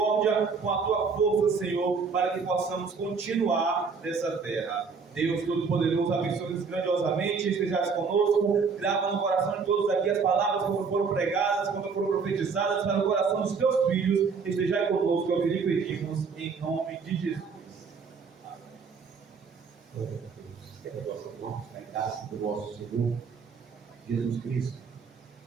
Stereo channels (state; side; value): quieter; left; 5.2 dB